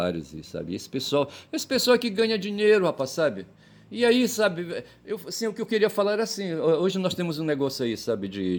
e sabe, esse pessoal que ganha dinheiro, rapaz, sabe? E aí, sabe, assim, o que eu queria falar era assim, hoje nós temos um negócio aí, sabe,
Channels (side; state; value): both; identical; correlation 1.00